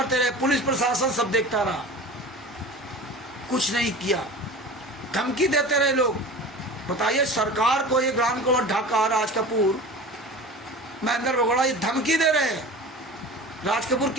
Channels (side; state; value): both; normal; correlation 0.36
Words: रहे, पुलिस प्रशासन सब देखता रहा, कुछ नहीं किया, धमकी देते रहे लोग। बताइए, सरकार को ये ग्राम कुमार ढाका, राज कपूर, महेंद्र बगोड़ा ये धमकी दे रहे हैं। राज कपूर